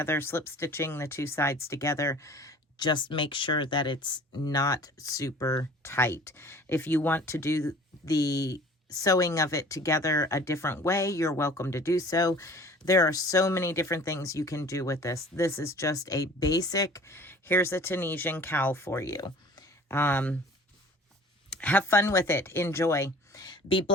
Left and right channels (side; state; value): both; normal; correlation 0.47